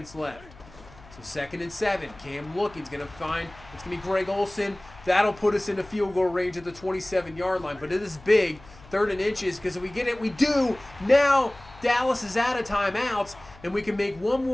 left. So 2nd and 7. Cam looking. He's going to find, it's going to be Greg Olsen. That'll put us into field goal range at the 27-yard line. But it is big. 3rd and inches, because if we get it, we do. Now Dallas is out of timeouts, and we can make one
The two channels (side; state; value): left; noise; hum, 22 dB below the sound